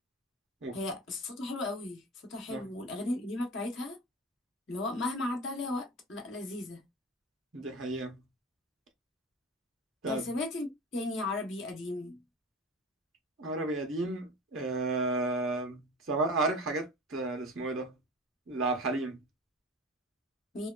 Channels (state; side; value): normal; both; correlation 0.34